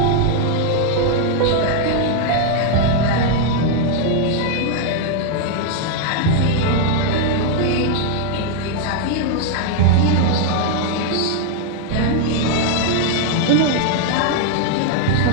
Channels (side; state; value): both; different; correlation 0.00